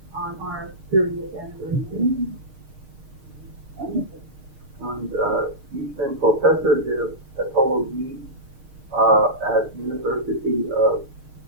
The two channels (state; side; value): late; left; 6.5 ms